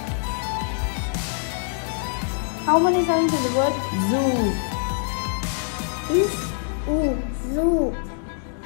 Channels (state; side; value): silent; right; 62 dB below the other